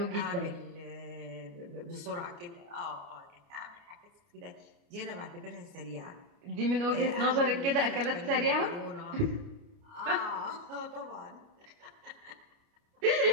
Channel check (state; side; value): late; left; 29 ms